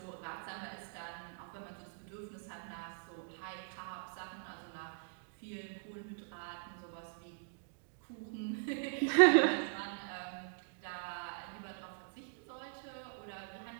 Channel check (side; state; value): left; silent; digital silence